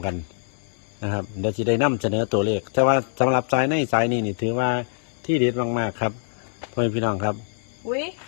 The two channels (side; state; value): right; silent; digital silence